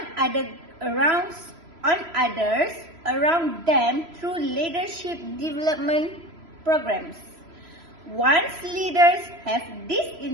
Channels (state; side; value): late; left; 3.0 ms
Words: others around them through leadership development programs. Once leaders have this